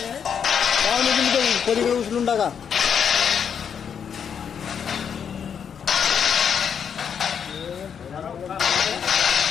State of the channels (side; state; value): right; quieter; 7.5 dB